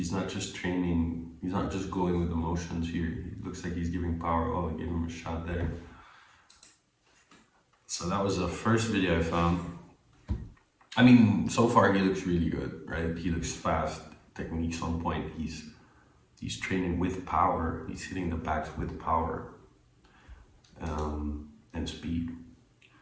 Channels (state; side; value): identical; both; correlation 1.00